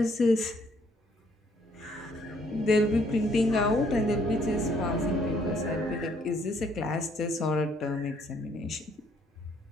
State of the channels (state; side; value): normal; both; correlation 0.66